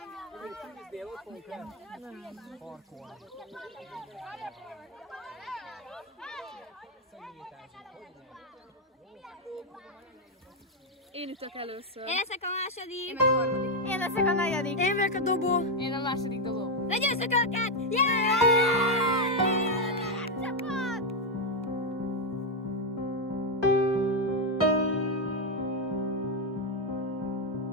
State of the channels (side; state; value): both; normal; correlation 0.03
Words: tűznél, ott fogunk parkolni. Én üttök először. Én leszek a második. Én meg a harmadik. Én leszek a negyedik. Én vagyok a dobó. Én a második dobó. Legyőzzük őket! Yeah!